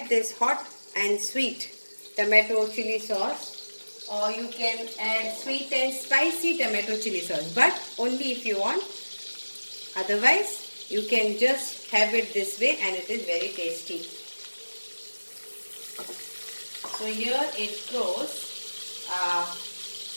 this hot and sweet tomato chili sauce, or you can add sweet and spicy tomato chili sauce, but only if you want. Otherwise you can just have it this way and it is very tasty. So here it goes.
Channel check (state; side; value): inverted; both; correlation -1.00